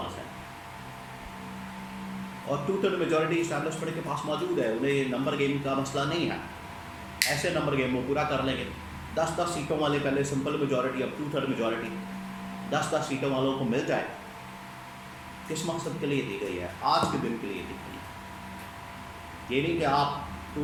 ہے، اور 2/3 میجورٹی اسٹیبلشمنٹ کے پاس موجود ہے۔ انہیں نمبر گیم کا مسئلہ نہیں ہے، ایسے نمبر گیم وہ پورا کر لیں گے۔ 10 سیٹوں والے پہلے سمپل میجورٹی، اب 2/3 میجورٹی، 10 سیٹوں والوں کو مل جائے، کس مقصد کے لیے دی گئی ہے؟ آج کے دن کے لیے دی گئی ہے۔ یہ نہیں کہ آپ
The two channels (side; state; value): both; identical; correlation 1.00